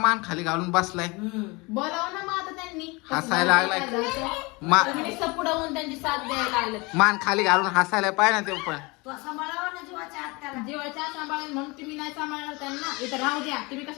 खाली घालून बसलाय. बोलावं ना मग आता त्यांनी हसायला लागलाय. तुम्ही नुसतं पुढं होऊन त्यांची साथ द्यायला लागलं. मान खाली घालून हसायला पाहिजे ना ते पण. तू सांभाळावा ना जीवाच्या हात त्याला. जेवायच्या सांभाळून म्हणून तुम्ही नाही सांभाळणार त्यांना. इथं राहू द्या तुम्ही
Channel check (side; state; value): right; quieter; 26.0 dB